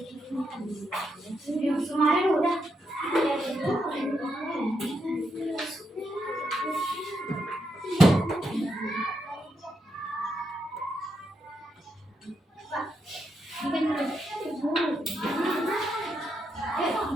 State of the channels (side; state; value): both; normal; correlation 0.82